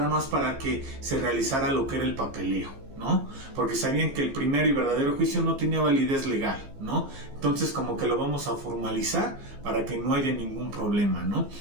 más para que se realizara lo que era el papeleo, ¿no? Porque sabían que el primero y verdadero juicio no tenía validez legal, ¿no? Entonces como que lo vamos a formalizar para que no haya ningún problema, ¿no?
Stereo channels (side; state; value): left; late; 15 ms